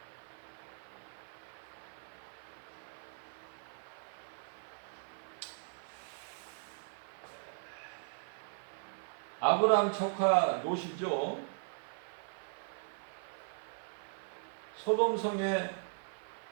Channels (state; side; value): silent; left; 52 dB below the other